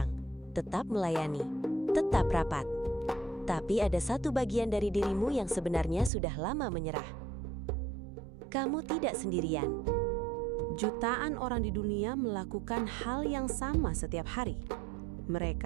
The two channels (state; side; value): drops out; left; at 6.1 s